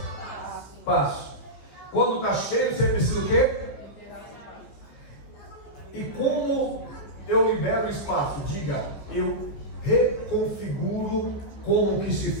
Quando está cheio, você precisa o quê? E como eu libero o espaço? Diga, eu reconfiguro como que se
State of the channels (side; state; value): right; late; 15 ms